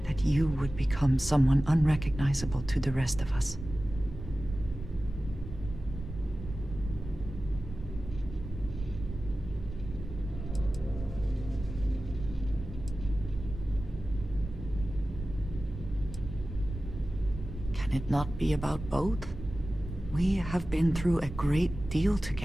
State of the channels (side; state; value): right; noise; rumble, 10 dB below the sound